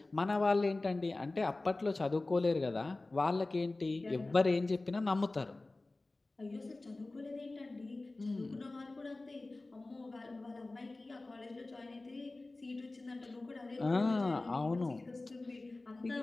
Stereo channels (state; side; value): quieter; right; 3.1 dB